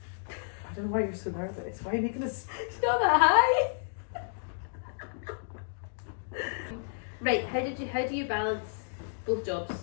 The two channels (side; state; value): right; silent; digital silence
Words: I don't know why you're so nervous. Why are you making this? It's not that high. Right. How do you balance both